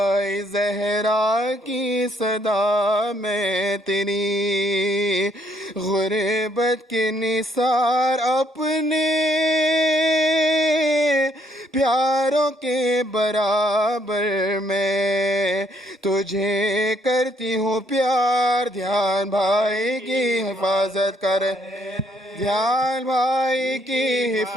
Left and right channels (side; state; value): both; normal; correlation 0.69